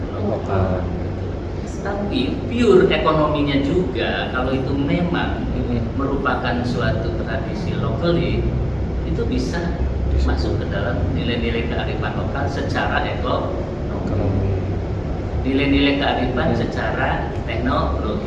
lokal. Tapi pure ekonominya juga kalau itu memang merupakan suatu tradisi lokal itu bisa masuk ke dalam nilai-nilai kearifan lokal secara nilai-nilai kearifan secara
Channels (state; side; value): identical; both; correlation 1.00